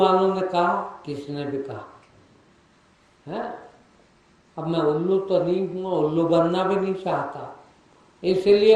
ने कहा, किसने भी कहा है। अब मैं उल्लू तो नहीं हूँ, उल्लू बनना भी नहीं चाहता,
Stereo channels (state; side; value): identical; both; correlation 1.00